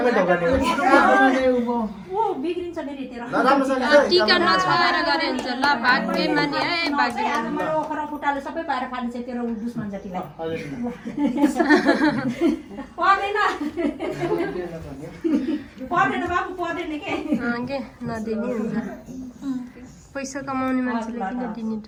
ढोकाने बिग्रिन्छ फेरि तेरो टीका नछाएर गरे हुन्छ ल भाग्य माने है भाग्य ओखरा फुटाले सबै पाएर खान्छ तेरो दुश्मन जतिलाई पर्दैन बाबु पर्दैन के नदिने हुन्छ पैसा कमाउने मान्छेले किन दिने त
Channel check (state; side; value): identical; both; correlation 1.00